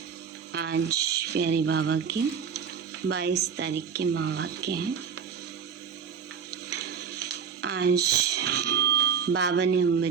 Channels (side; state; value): left; quieter; 6.8 dB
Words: आज प्यारे बाबा के 22 तारीख के महावाक्य हैं। आज बाबा ने हम